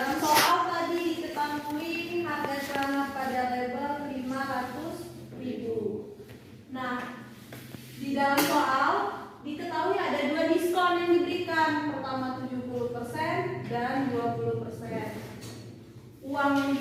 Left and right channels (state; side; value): identical; both; correlation 1.00